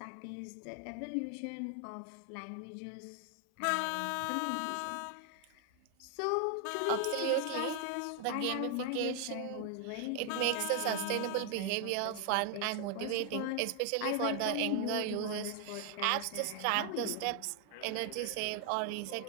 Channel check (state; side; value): different; both; correlation 0.00